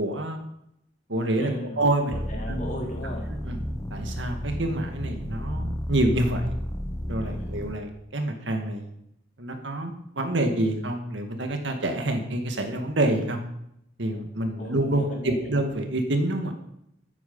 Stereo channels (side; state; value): both; normal; correlation 0.52